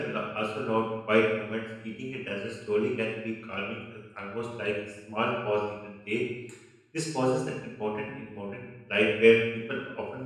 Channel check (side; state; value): both; identical; correlation 1.00